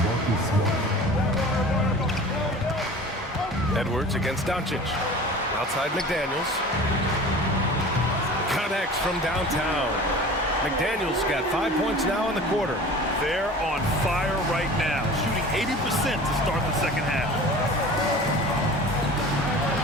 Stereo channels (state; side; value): normal; both; correlation 0.40